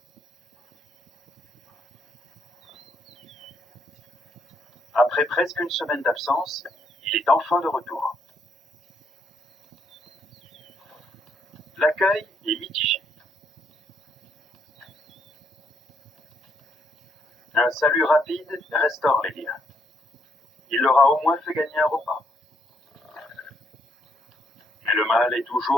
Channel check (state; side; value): normal; both; correlation 0.72